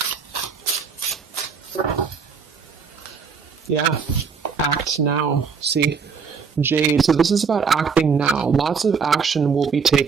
Yeah, act now. See, Jade. So this is about acting now. Lots of action will be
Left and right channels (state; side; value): quieter; left; 5.8 dB